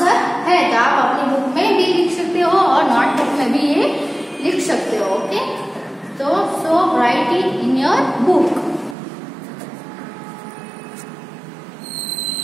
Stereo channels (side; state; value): left; drops out; at 9.0 s